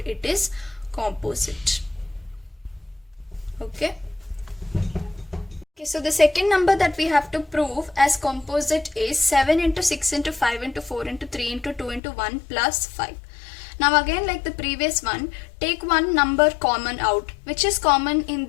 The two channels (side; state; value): right; drops out; at 12.0 s